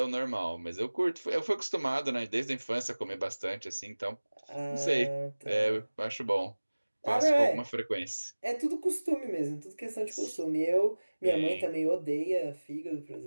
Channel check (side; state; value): both; inverted; correlation -1.00